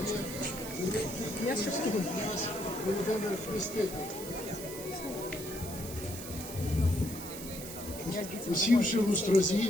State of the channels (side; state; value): right; noise; hiss, 11 dB below the sound